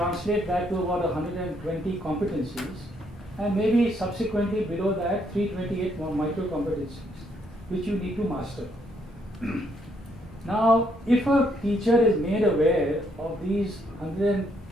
that to about 120 competencies, and maybe subsequently below that 328 more micro competencies, which you need to master. Now, if a teacher is made aware of these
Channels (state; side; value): normal; both; correlation 0.72